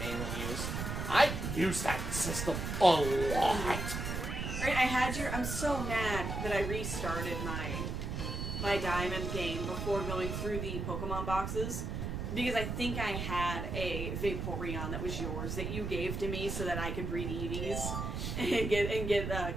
used. I used that system a lot. Right, I'm so mad that I restarted my Diamond game before going through the Pokemon boxes. Because I think I had a Vaporeon that was yours that you gave to me so that I could breed Eevees and get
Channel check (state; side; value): noise; right; rumble, 3 dB below the sound